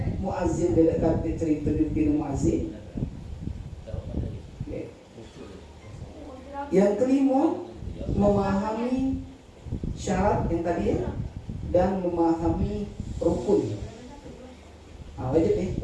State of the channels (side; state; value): both; identical; correlation 1.00